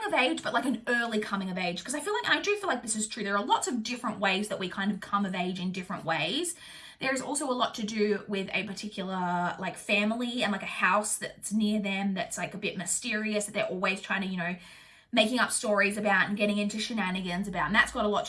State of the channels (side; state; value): both; identical; correlation 1.00